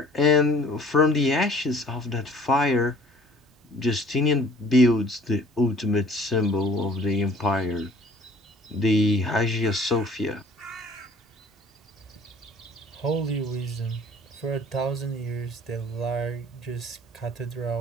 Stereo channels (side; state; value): both; normal; correlation 0.52